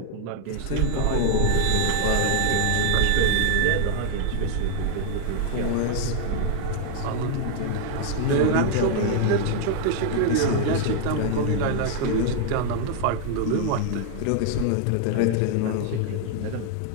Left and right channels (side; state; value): both; different; correlation 0.00